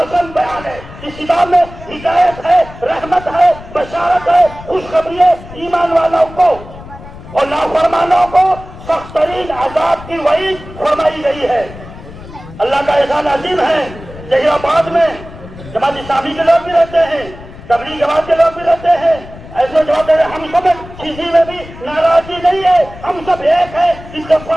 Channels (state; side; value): noise; left; rumble, 16 dB below the sound